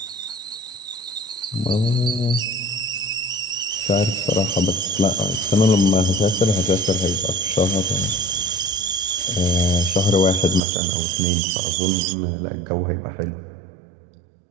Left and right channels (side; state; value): left; drops out; at 10.6 s